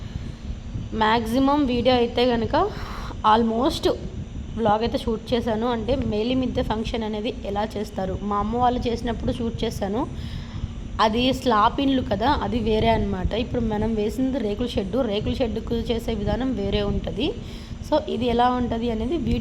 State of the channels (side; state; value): both; identical; correlation 1.00